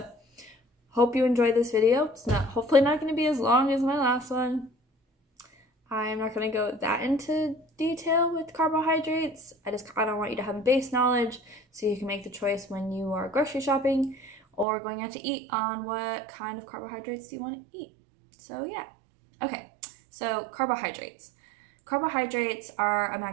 hope you enjoyed this video. It's hopefully not going to be as long as my last one. I'm not going to go that into detail with carbohydrates. I don't want you to have a base knowledge so you can make the choice when you are grocery shopping or going out to eat on what kind of carbohydrates you want to eat. So yeah. Okay, so carbohydrates. Carbohydrates are a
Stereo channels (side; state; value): left; drops out; at 14.7 s